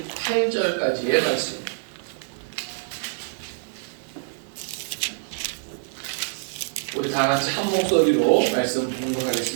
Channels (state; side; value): silent; left; digital silence